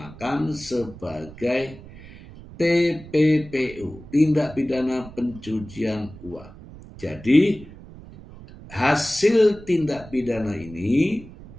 sebagai TPPU, tindak pidana pencucian uang. Jadi hasil tindak pidana ini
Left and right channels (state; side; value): noise; right; rumble, 17 dB below the sound